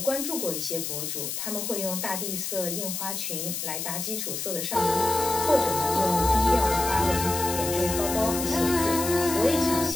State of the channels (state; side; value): noise; left; hiss, 4 dB below the sound